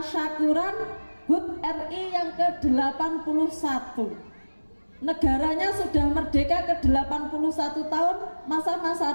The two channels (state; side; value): inverted; both; correlation -1.00